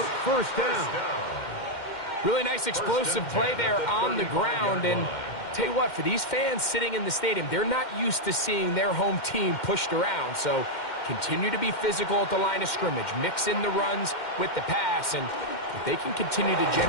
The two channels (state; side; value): late; right; 2.1 ms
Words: first down. Really nice explosive play there on the ground. And tell you what, for these fans sitting in the stadium, they're not used to seeing their home team pushed around. So continue to be physical at the line of scrimmage. Mix in the runs with the pass. And if they can continue to